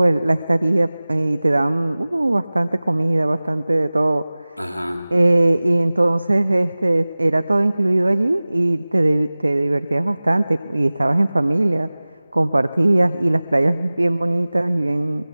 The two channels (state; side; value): inverted; both; correlation -0.99